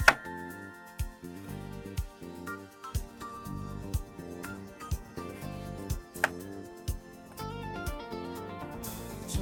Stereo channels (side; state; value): both; identical; correlation 1.00